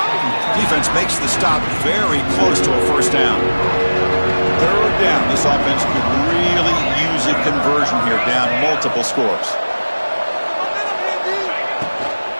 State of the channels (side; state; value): both; inverted; correlation -1.00